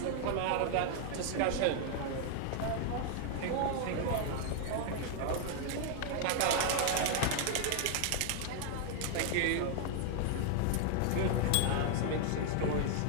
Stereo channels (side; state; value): both; different; correlation 0.00